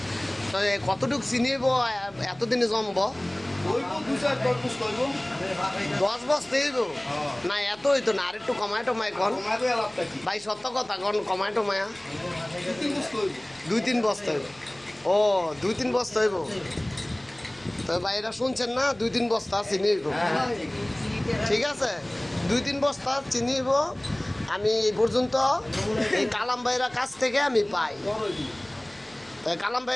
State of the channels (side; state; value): left; noise; hum, 29 dB below the sound